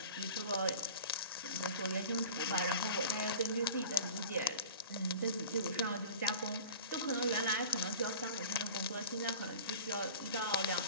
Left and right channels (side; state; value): both; inverted; correlation -0.39